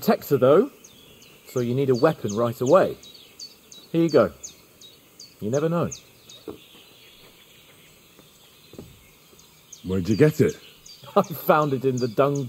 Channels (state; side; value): identical; both; correlation 1.00